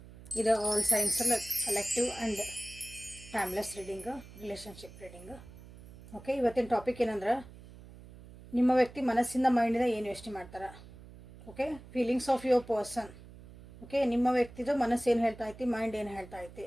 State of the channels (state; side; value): noise; right; hum, 18 dB below the sound